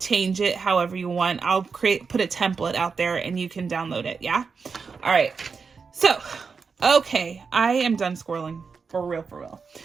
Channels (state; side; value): quieter; left; 5.3 dB